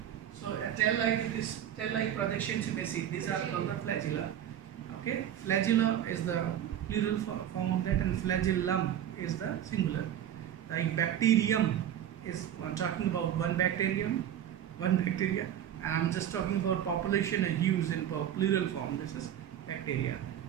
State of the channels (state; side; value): quieter; left; 10.4 dB